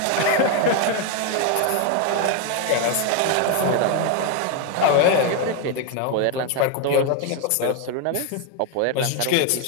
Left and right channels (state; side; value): different; both; correlation 0.01